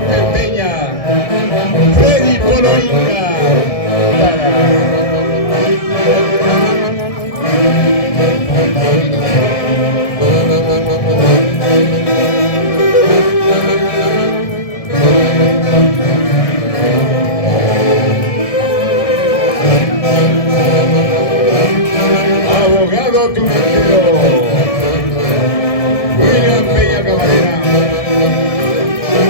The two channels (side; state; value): right; late; 1.7 ms